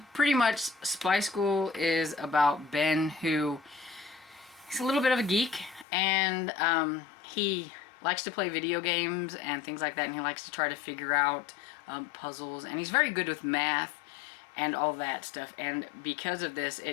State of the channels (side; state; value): right; drops out; at 5.9 s